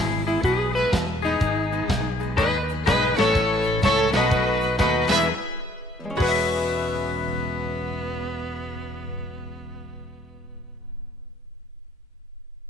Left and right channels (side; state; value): both; normal; correlation 0.62